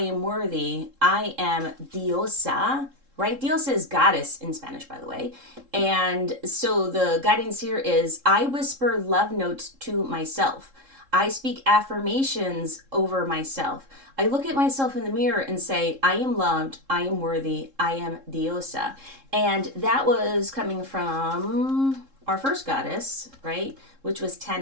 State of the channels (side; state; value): left; late; 3.7 ms